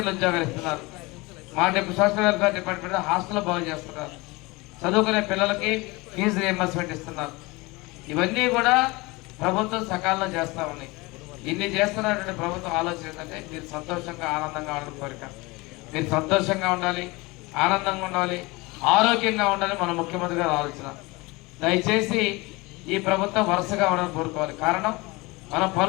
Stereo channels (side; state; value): right; quieter; 23.7 dB